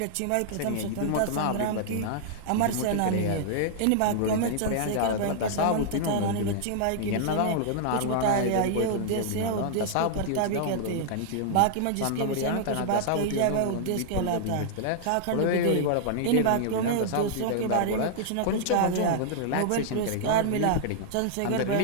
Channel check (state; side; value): different; both; correlation -0.01